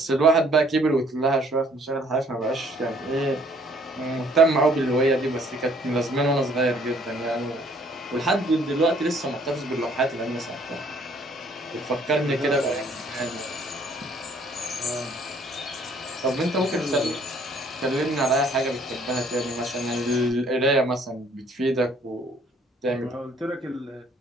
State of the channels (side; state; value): both; normal; correlation 0.61